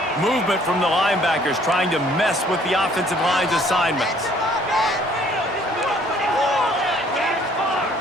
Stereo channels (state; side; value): normal; both; correlation 0.59